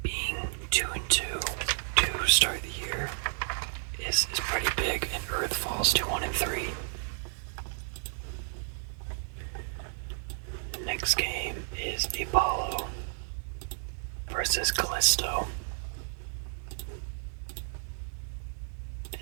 being 2-2 to start the year is pretty big, and Earth falls to 1-3. Next game is Apollo versus Callisto.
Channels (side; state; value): left; silent; digital silence